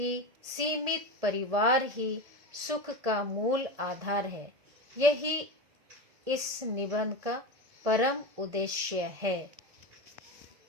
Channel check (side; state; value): left; late; 1.7 ms